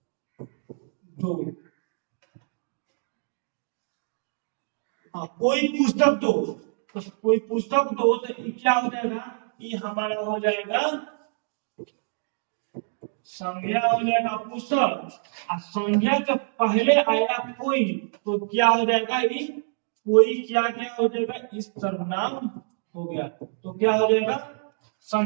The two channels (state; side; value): silent; left; digital silence